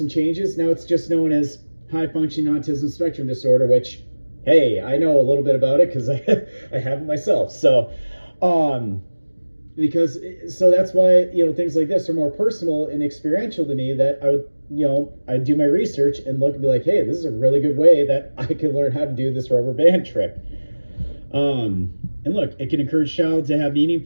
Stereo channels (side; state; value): both; inverted; correlation -1.00